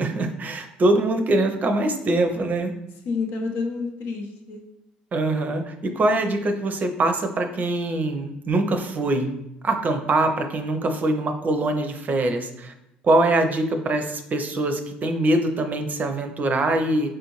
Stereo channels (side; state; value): both; normal; correlation 0.70